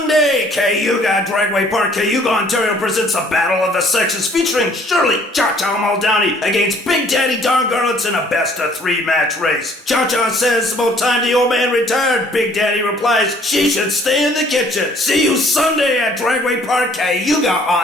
Cayuga, Dragway Park, Cayuga, Ontario presents a Battle of the Sexes featuring Shirley Cha-Cha Muldowney against Big Daddy Don Garlitz in a best-of-3 match race. Cha-Cha says about time the old man retired. Big Daddy replies she should stay in the kitchen. See you Sunday at Dragway Park, Cayuga,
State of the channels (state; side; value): normal; both; correlation 0.59